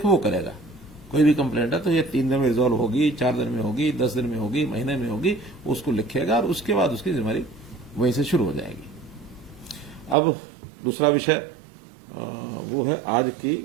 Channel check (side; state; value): left; drops out; at 10.2 s